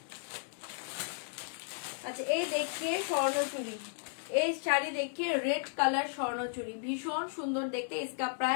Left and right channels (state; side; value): silent; right; digital silence